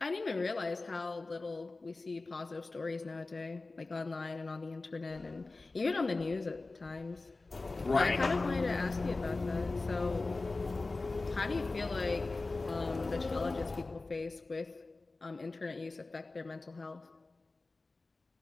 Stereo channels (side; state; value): right; quieter; 3.4 dB